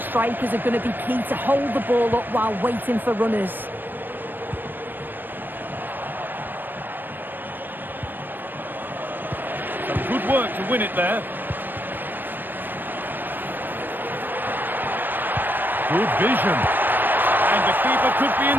strikers are going to be key to hold the ball up while waiting for runners. Some good work to win it there. Good vision. And the keeper could be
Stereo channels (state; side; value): late; left; 0.092 ms